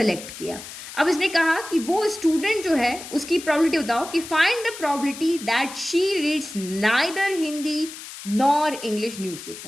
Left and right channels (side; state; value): left; noise; hiss, 13 dB below the sound